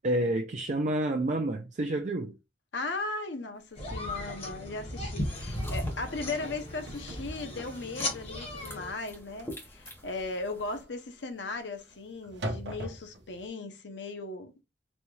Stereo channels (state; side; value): normal; both; correlation 0.35